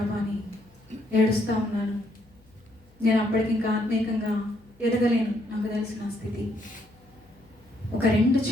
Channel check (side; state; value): left; noise; hum, 29 dB below the sound